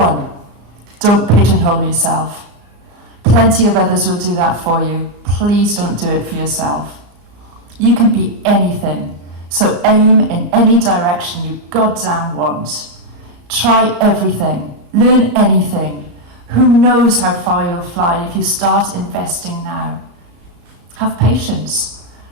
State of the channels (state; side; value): late; left; 34 ms